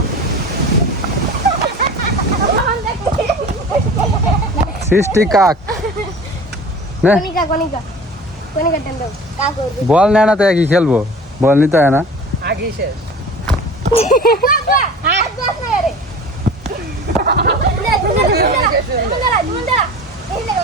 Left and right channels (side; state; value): both; normal; correlation 0.39